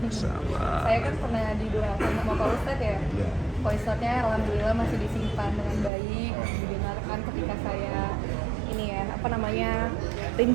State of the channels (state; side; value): drops out; left; at 5.9 s